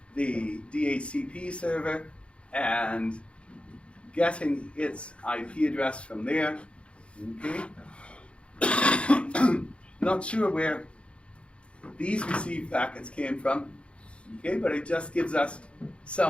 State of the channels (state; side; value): late; right; 0.059 ms